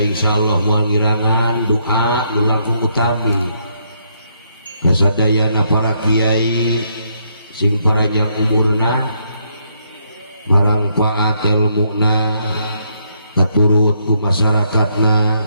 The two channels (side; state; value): both; inverted; correlation -0.74